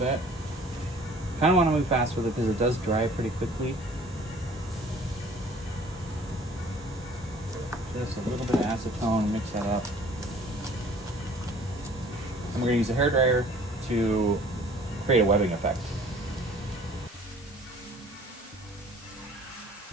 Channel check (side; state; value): both; normal; correlation 0.52